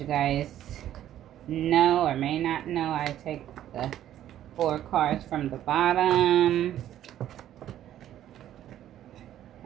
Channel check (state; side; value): quieter; left; 11.8 dB